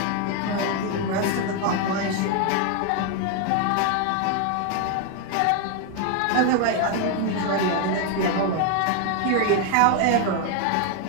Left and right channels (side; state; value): both; different; correlation 0.01